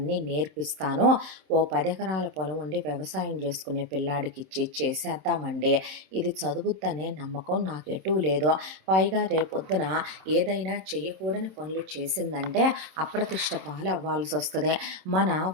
నేర్పిస్తాను. ఓ 10 ఎకరాల పొలం ఉండి వ్యవసాయం చేసుకునే పిల్లాడికి ఇచ్చి చేసేద్దామండి. ఇది చదువుద్దనే నమ్మకం నాకు ఎటూ లేదు. పైగా రేపొద్దున ఏదైనా చేయకూడని పనులు చేసిందంటే అప్రతిష్ట పాలు అవ్వాల్సి వస్తుంది. మన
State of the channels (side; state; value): left; late; 26 ms